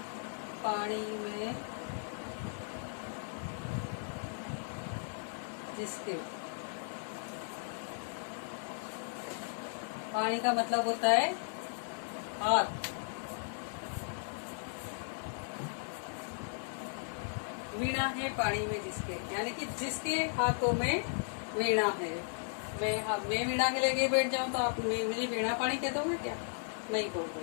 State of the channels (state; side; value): silent; right; digital silence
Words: पानी में जिसके। पानी का मतलब होता है हाथ। वीणा है पानी में जिसके, यानी कि जिसके हाथों में वीणा है। मैं वीणा के लेके बैठ जाऊं तो आप मुझे वीणा पानी कह दोगे क्या? नहीं